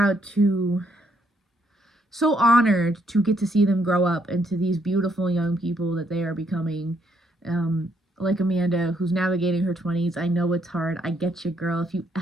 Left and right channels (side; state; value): both; normal; correlation 0.72